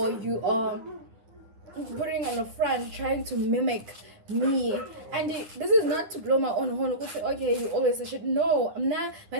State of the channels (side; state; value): left; late; 10 ms